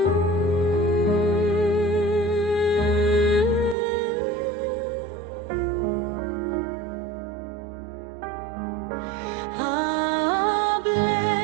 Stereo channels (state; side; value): drops out; left; at 3.8 s